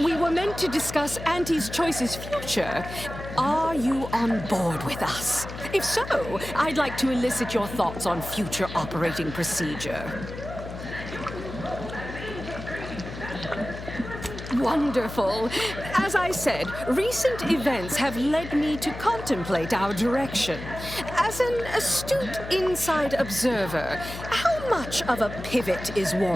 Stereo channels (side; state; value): left; noise; hum, 10 dB below the sound